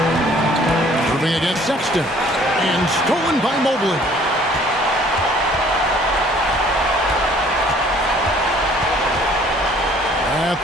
Irving against Sexton. And stolen by Mobley. At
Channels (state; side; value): normal; both; correlation 0.56